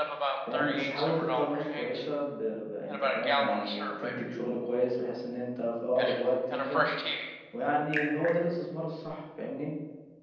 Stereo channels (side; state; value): both; identical; correlation 1.00